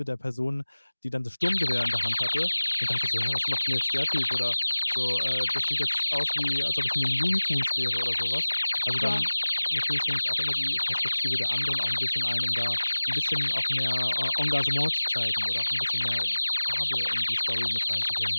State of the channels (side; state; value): both; inverted; correlation -1.00